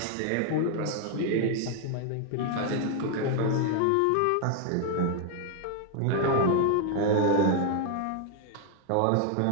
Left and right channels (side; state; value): both; different; correlation 0.00